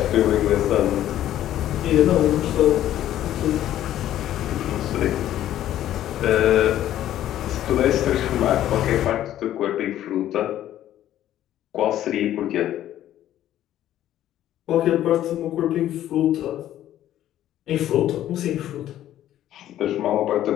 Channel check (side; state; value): right; quieter; 12.4 dB